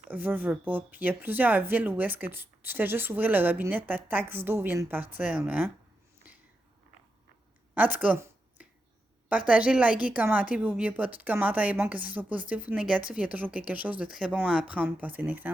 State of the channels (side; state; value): both; normal; correlation 0.86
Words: veux pas. Puis il y a plusieurs villes où est-ce que tu fais juste ouvrir le robinet, ta taxe d'eau vient de partir, là. Hein? En tout cas, partagez, likez, commentez, puis n'oubliez pas, tout commentaire est bon, que ce soit positif ou négatif, il y a toujours quelque chose de très bon à apprendre. Passez une